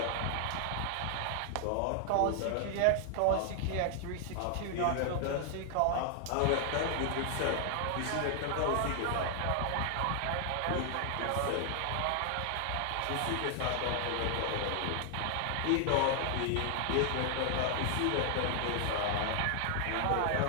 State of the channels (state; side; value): different; both; correlation 0.00